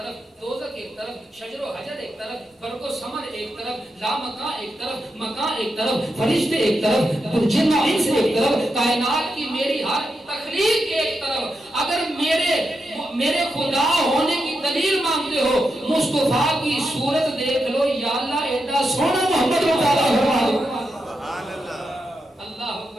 دوزخ ایک طرف، شجر و حجر ایک طرف، برگ و ثمر ایک طرف، لامکان ایک طرف، مکان ایک طرف، فرشتے ایک طرف، جن و انس ایک طرف، کائنات کی میری ہر تخلیق ایک طرف. اگر میرے خدا ہونے کی دلیل مانگتے ہو، مصطفیٰ کی صورت دیکھ لو. یا اللہ ایڈا سونا محمد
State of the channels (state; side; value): normal; both; correlation 0.86